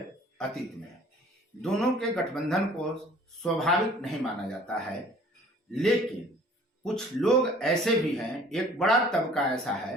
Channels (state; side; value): normal; both; correlation 0.51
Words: अतीत में दोनों के गठबंधन को स्वाभाविक नहीं माना जाता है, लेकिन कुछ लोग ऐसे भी हैं, एक बड़ा तबका ऐसा